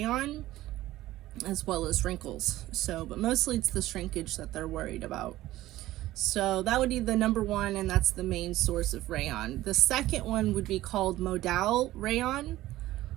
as well as wrinkles. But mostly it's the shrinkage that they're worried about. So that would be the number one, and that's the main source of rayon. The second one would be called modal rayon.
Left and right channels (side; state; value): left; quieter; 15.8 dB